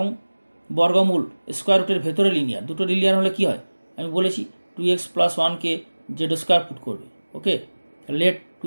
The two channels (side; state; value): both; inverted; correlation -1.00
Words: বর্গমূল স্কোয়ার রুটের ভেতরে লিনিয়ার, দুটো লিনিয়ার হলে কি হয় আমি বলেছি, 2x + 1কে z² পুট করবে। ওকে, লেট